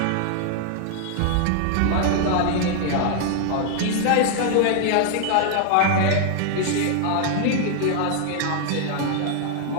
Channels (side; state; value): both; different; correlation 0.00